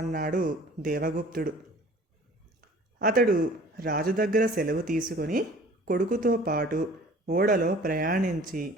అన్నాడు దేవగుప్తుడు. అతడు రాజు దగ్గర సెలవు తీసుకొని కొడుకుతో పాటు ఓడలో ప్రయాణించి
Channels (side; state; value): both; normal; correlation 0.48